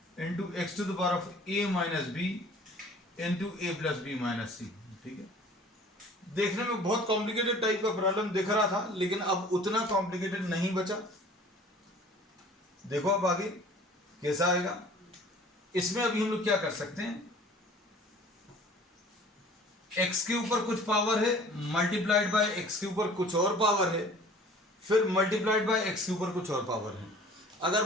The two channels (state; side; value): normal; both; correlation 0.48